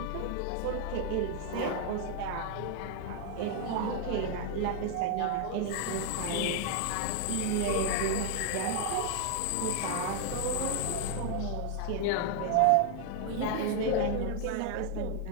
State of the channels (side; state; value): both; different; correlation 0.00